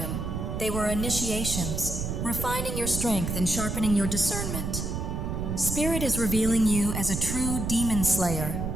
They were initiations, refining your strength and sharpening your discernment. Spirit is revealing you as a true demon slayer,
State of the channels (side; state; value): right; noise; rumble, 3 dB below the sound